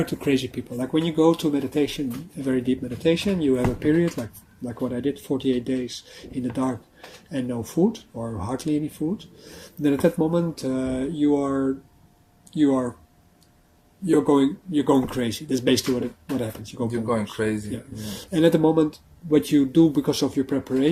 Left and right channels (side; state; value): both; identical; correlation 1.00